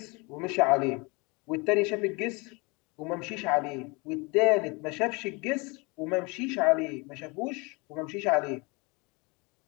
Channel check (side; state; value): right; quieter; 28.0 dB